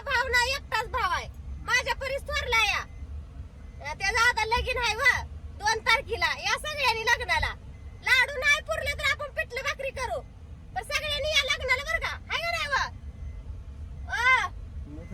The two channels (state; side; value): identical; both; correlation 1.00